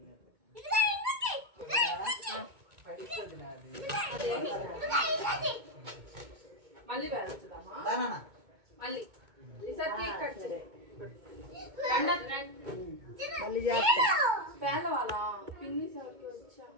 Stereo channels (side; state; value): left; late; 2.2 ms